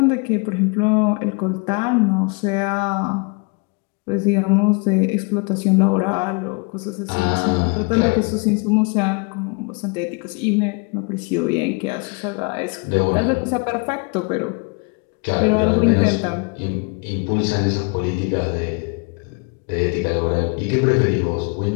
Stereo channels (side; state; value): right; quieter; 32.0 dB